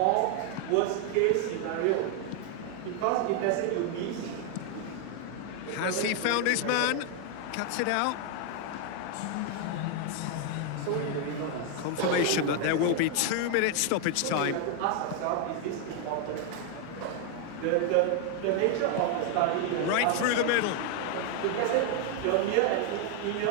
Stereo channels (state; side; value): different; both; correlation 0.01